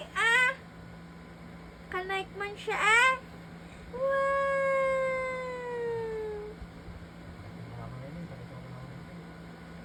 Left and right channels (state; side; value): identical; both; correlation 1.00